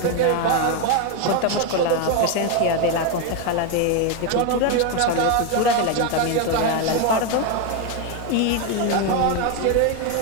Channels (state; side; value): different; both; correlation 0.02